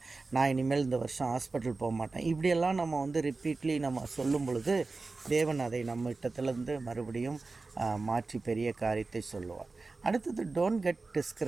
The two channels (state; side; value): quieter; left; 3.7 dB